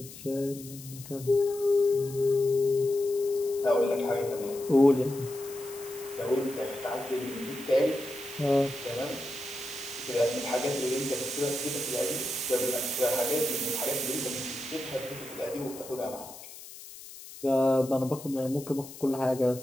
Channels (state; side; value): noise; left; hiss, 15 dB below the sound